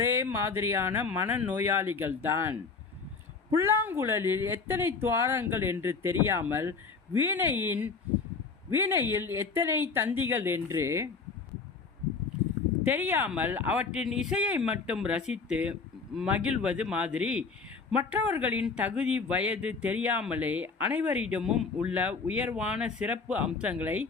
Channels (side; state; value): right; quieter; 4.7 dB